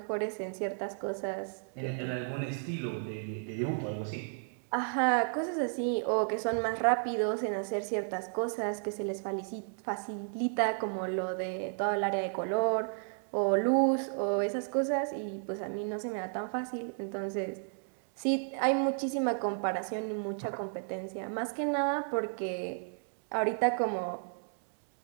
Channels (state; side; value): silent; left; 56 dB below the other